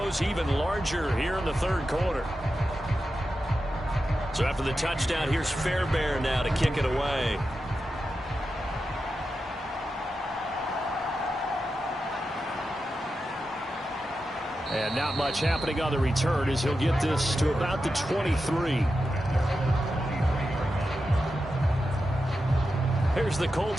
even larger here in the third quarter. So after the touchdown, here's Fairbairn now to kick it away. And not much happening on the return as he'll get this to about the 23. Here's the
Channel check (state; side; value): normal; both; correlation 0.90